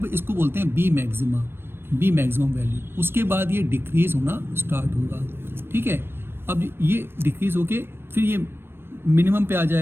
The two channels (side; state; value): left; late; 0.11 ms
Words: इसको बोलते हैं B मैक्सिमम वैल्यू, उसके बाद ये डिक्रीज होना स्टार्ट होगा, ठीक है। अब ये डिक्रीज होके फिर ये मिनिमम पे आ